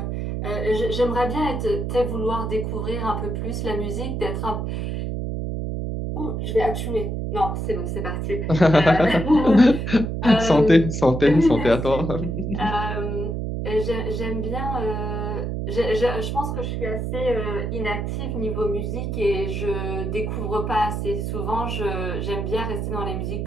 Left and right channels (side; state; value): right; noise; hum, 2 dB below the sound